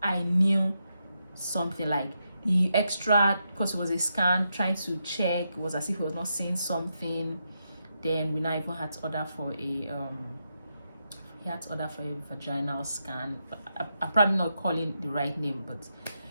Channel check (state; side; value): inverted; both; correlation -0.84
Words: I knew something. Like, the extra, because it was a scan, trying to check, it was as if he was not seeing something. Then we now even had to order for a vaginal scan. But I'm probably not calling the right name, but